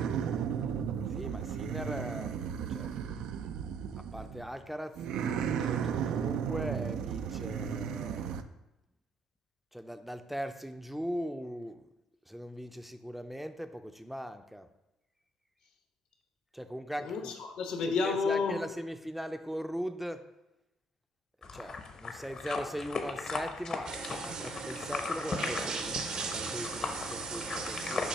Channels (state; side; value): normal; both; correlation 0.66